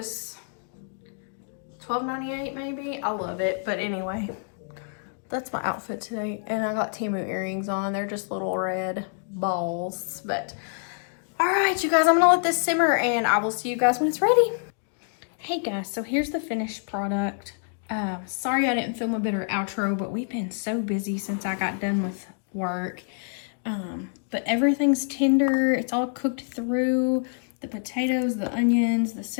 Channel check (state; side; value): silent; right; 60 dB below the other